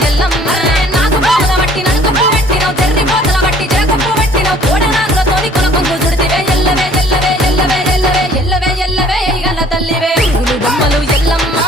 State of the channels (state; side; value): normal; both; correlation 0.55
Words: ఎల్లమ్మ నాకు పోల బట్టి నలుకప్పు పెట్టినవు చెర్రి పోతల బట్టి జరకప్పు పెట్టినవు కోడ నాగులతోని కొనకొంగు చుడితివే ఎల్లవే ఎల్లవే ఎల్లవే ఎల్లవే ఎల్లవే ఎల్లవే ఈగల్ల తల్లివే గులు బొమ్మలు ఎల్లమ్మ